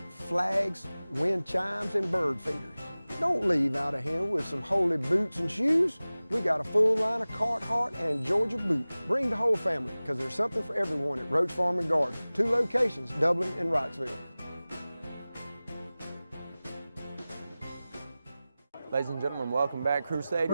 flags, wind chimes, and bird feeders. Don't leave out of here with some holy boots and shoes. We got a full line of Carhartt and Georgia boots. Bring the whole family, because there's something for everyone at Roach Farm and Garden. 2 locations, Dublin and Wrightsville. Ladies and gentlemen, welcome back.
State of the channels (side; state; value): both; inverted; correlation -0.98